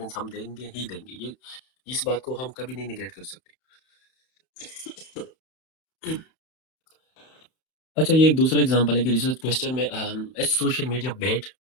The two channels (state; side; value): late; right; 31 ms